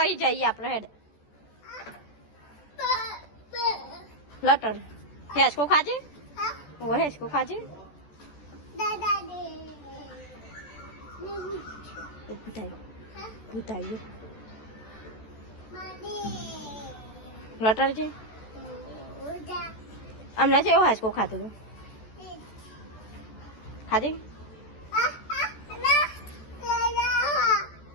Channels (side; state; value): right; late; 14 ms